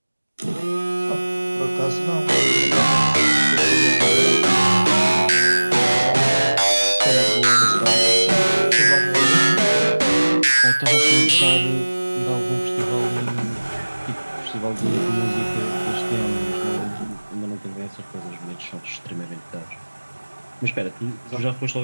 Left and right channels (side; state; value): both; inverted; correlation -1.00